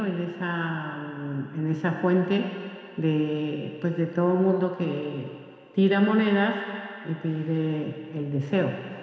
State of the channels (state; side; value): identical; both; correlation 1.00